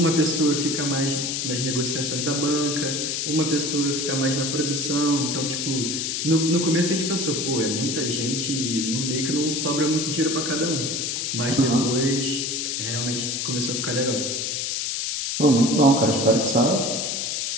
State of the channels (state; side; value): noise; left; hiss, 1 dB below the sound